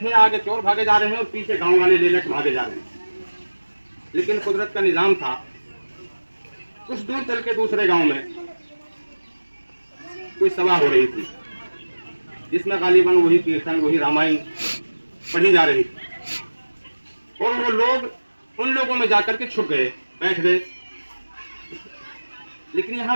आगे चोर भागे जा रहे हैं और पीछे गांव वाले ले लेकर भागे जा रहे हैं। लेकिन कुदरत का निजाम था, कुछ दूर चल के दूसरे गांव में कोई सभा हो रही थी, जिसमें गालिबन वही कीर्तन, वही रामायण पढ़ी जा रही थी। और वो लोग उन लोगों में जाकर के छुप गए, बैठ गए। लेकिन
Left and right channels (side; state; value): both; inverted; correlation -1.00